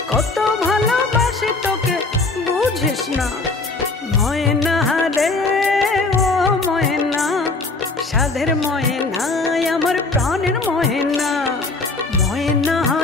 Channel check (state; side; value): quieter; right; 3.6 dB